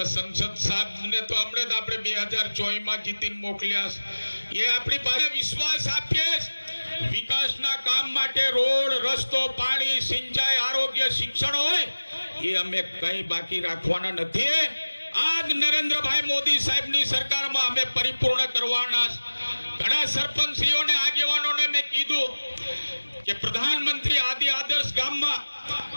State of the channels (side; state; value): both; inverted; correlation -1.00